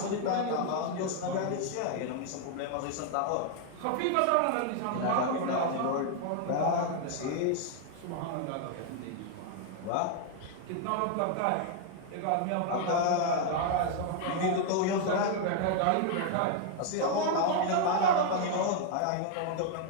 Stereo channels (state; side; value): different; both; correlation 0.00